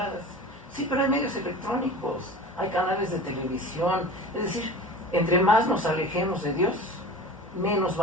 Sí, pero hay medios electrónicos, hay canales de televisión. Es decir, entre más nos alejemos de Dios, menos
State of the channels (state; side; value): normal; both; correlation 0.36